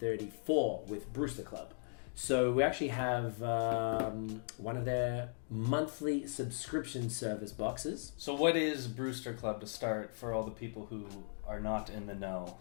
with Brewster Club. So we actually have one of their monthly subscription service boxes. So what is Brewster Club to start for all the people who are not in the know?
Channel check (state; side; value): silent; right; digital silence